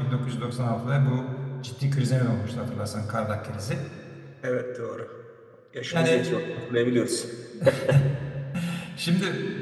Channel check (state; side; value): identical; both; correlation 1.00